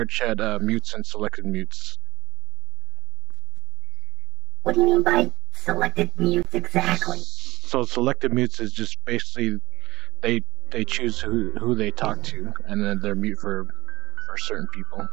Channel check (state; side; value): quieter; left; 18.7 dB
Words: mutes and selected mutes? What do you mean by selected mutes exactly? So selected mutes is just basically they they choose who they talk to, and then they're mute for certain people.